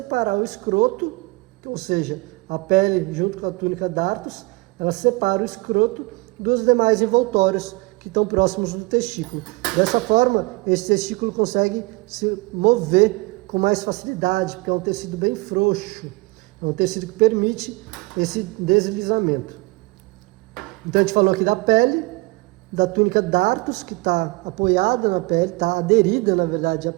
o escroto, ou seja, a pele junto com a túnica dartos, ela separa o escroto dos demais envoltórios que estão próximos do testículo. Dessa forma, esse testículo consegue se mover com mais facilidade, porque é um tecido bem frouxo, é um tecido que permite esse deslizamento. Então a gente falou aqui da pele, da túnica dartos, que está apoiada na pele, está aderida na verdade à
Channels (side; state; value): left; quieter; 25.0 dB